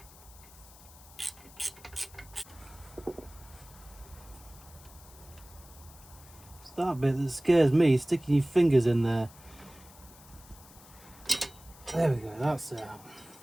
It's that bit that scares me, sticking your fingers in there. There we go, that's out.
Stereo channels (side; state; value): left; noise; hiss, 21 dB below the sound